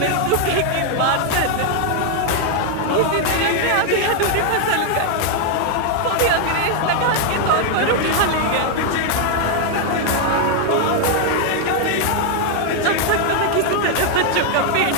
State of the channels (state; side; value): different; both; correlation 0.00